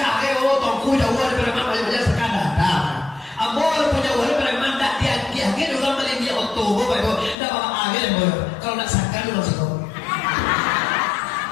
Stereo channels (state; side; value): drops out; right; at 7.4 s